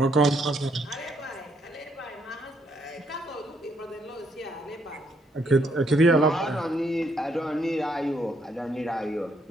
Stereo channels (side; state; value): both; normal; correlation 0.72